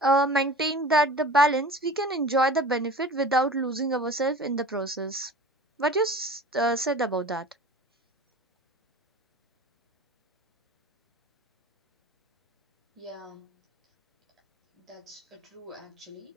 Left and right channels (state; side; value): normal; both; correlation 0.39